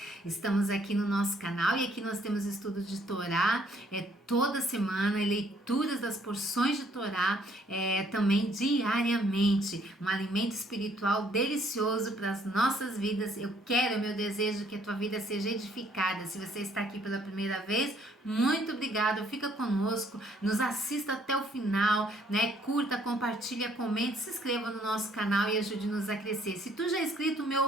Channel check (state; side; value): normal; both; correlation 0.65